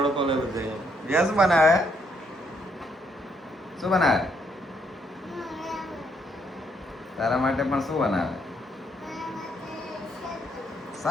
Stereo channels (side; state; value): both; normal; correlation 0.73